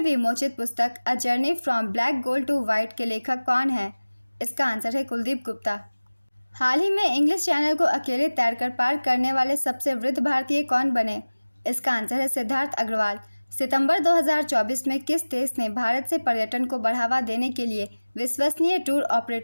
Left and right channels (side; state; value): both; inverted; correlation -1.00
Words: पुस्तक a journey from black gold to white के लेखक कौन है? इसका आंसर है कुलदीप गुप्ता। हाल ही में इंग्लिश चैनल को अकेले तैरकर पार करने वाले सबसे वृद्ध भारतीय कौन बने? इसका आंसर है सिद्धार्थ अग्रवाल। सितंबर 2024 में किस देश ने भारत से पर्यटन को बढ़ावा देने के लिए विश्वसनीय टूर